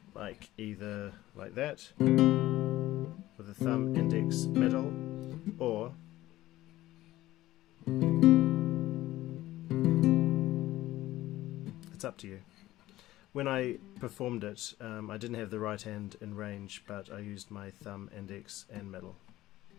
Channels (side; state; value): right; quieter; 16.0 dB